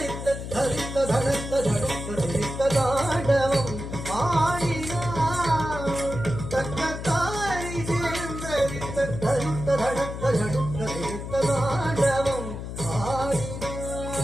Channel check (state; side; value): noise; left; hum, 7 dB below the sound